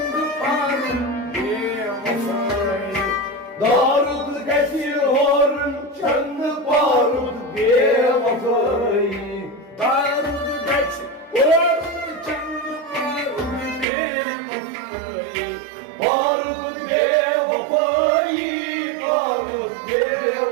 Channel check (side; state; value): left; drops out; at 13.9 s